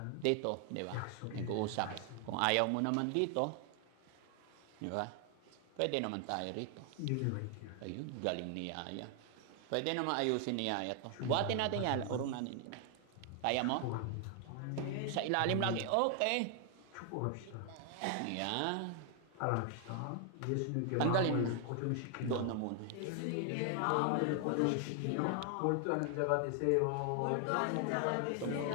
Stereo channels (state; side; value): different; both; correlation 0.00